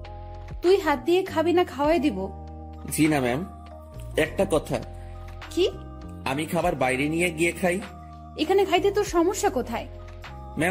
তুই হাত দিয়ে খাবি না খাওয়াই দিব? জি না ম্যাম। একটা কথা, কি? আমি খাবার বাইরে নিয়ে গিয়ে খাই। এখানে খাইতে তোর সমস্যা কোথায়?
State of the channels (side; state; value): both; identical; correlation 1.00